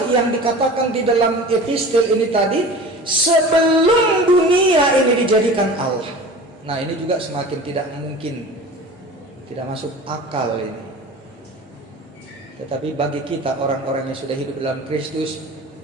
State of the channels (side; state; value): both; normal; correlation 0.38